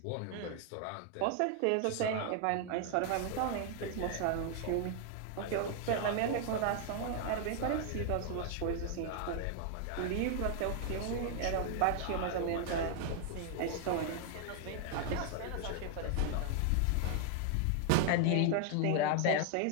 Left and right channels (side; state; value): both; different; correlation 0.00